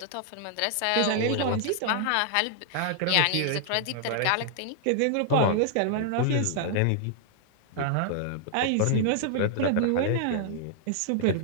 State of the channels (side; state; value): both; different; correlation -0.01